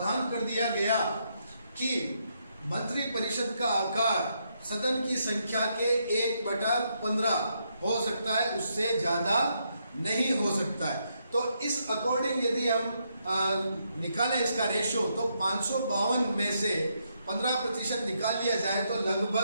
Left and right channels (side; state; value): both; inverted; correlation -0.78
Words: कर दिया गया कि मंत्री परिषद का आकार सदन की संख्या के 1/15 हो सकता है, उससे ज्यादा नहीं हो सकता है। तो इस अकॉर्डिंग यदि हम निकालें इसका रेशो, तो 552 में से 15% निकाल लिया जाए तो